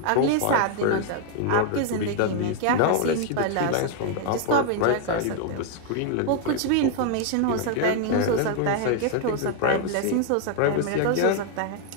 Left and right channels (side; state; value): both; different; correlation 0.00